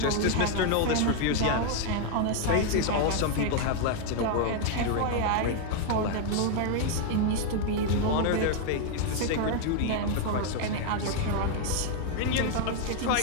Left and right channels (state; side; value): different; both; correlation 0.00